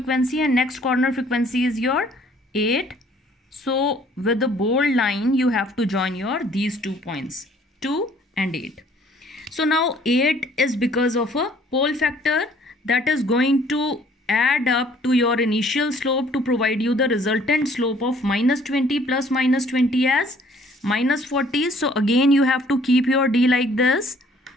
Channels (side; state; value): both; normal; correlation 0.58